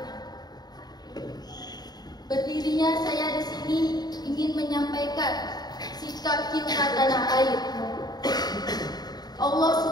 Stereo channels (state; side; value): late; right; 0.20 ms